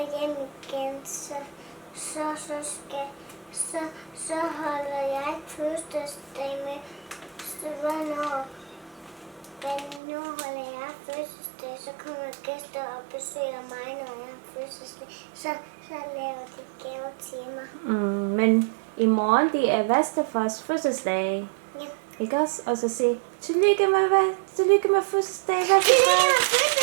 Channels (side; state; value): left; drops out; at 10.0 s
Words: hjem igen. Så holder jeg fødselsdag med. Hvornår holder jeg fødselsdag, så kommer gæster og besøger mig, når jeg har fødselsdag. Så laver de gaver til mig. Men i morgen, det er bedstefars fødselsdag. Ja. Ikke også? Og så sige, tillykke med fødselsdag, bedstefar. Tillykke med fødselsdag!